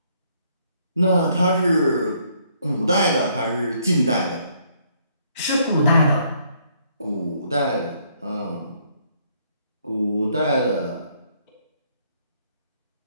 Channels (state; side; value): inverted; both; correlation -0.68